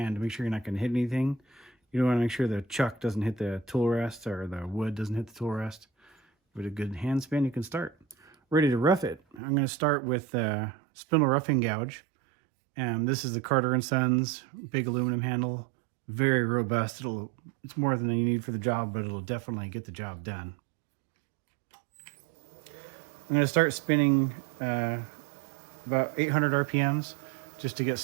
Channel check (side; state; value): left; drops out; at 9.4 s